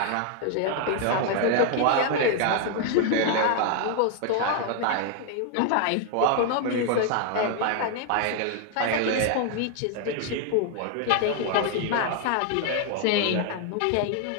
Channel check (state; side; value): different; both; correlation 0.00